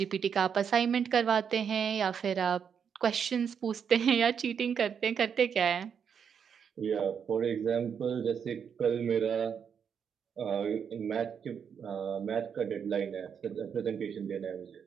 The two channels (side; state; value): left; quieter; 7.3 dB